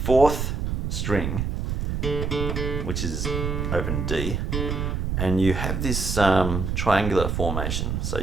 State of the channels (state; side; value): noise; right; rumble, 1 dB below the sound